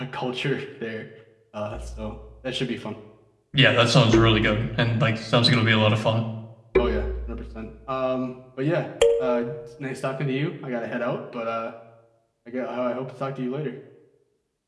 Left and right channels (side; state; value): both; identical; correlation 1.00